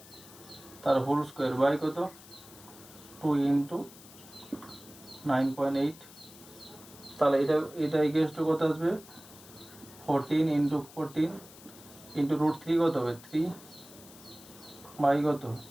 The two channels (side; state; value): left; noise; hiss, 20 dB below the sound